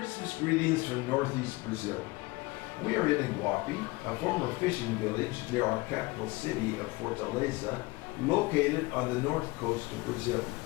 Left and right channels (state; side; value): quieter; right; 23.0 dB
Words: greetings from Northeast Brazil. We are in Iguape, a former fishing village near our capital city of Fortaleza, located on the north coast of Brazil.